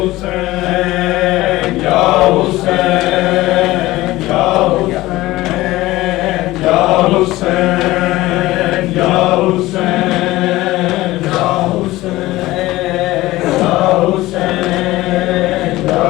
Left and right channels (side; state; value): right; quieter; 17.9 dB